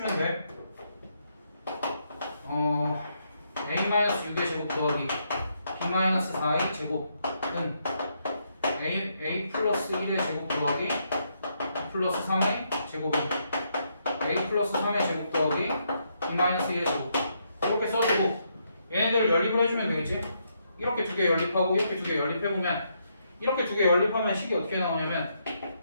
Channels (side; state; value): both; inverted; correlation -0.77